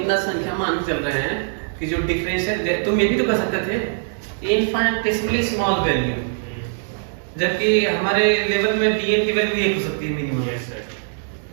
संख्या मान के चल रहे हैं कि जो डिफरेंशियल, तुम ये भी तो कर सकते थे इनफाइनिटेसिमली स्मॉल वैल्यू, जबकि हमारे लेवल में dn की वैल्यू 1 हो सकती है मिनिमम। Yes sir.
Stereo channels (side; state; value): left; silent; digital silence